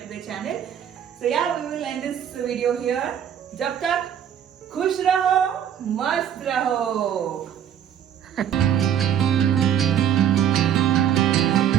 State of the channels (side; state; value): left; quieter; 9.5 dB